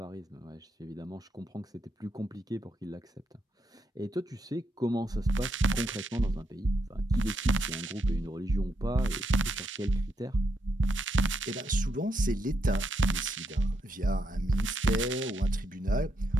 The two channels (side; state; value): both; normal; correlation 0.80